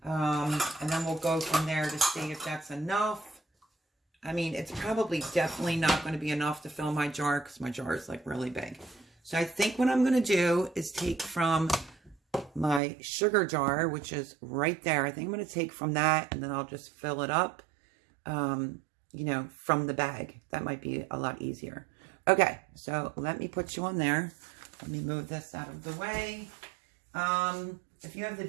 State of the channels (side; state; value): left; drops out; at 12.8 s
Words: And then we'll go from there to see if that's enough. I mean, it's probably definitely not going to be enough to fill my jar because my jar is like really big. So I think what I'm going to do is take from my sugar jar, which is right there. I think I'm going to take from that and then I'll just fill it up, you know, from the bag. That might be a lot easier. Okay, so let me put you on there. Let me move this out of the way. If you have the